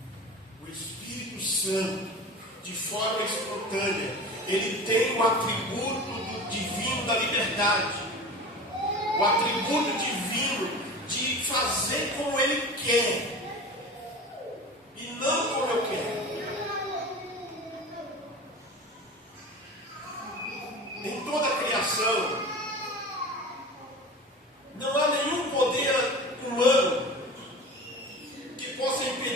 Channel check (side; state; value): both; normal; correlation 0.34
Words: O Espírito Santo, de forma espontânea, ele tem o atributo do divino da liberdade, o atributo divino de fazer como ele quer e não como eu quero. Em toda a criação não há nenhum poder humano que possa